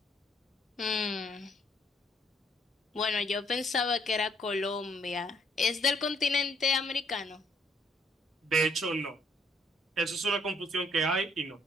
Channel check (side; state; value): both; normal; correlation 0.67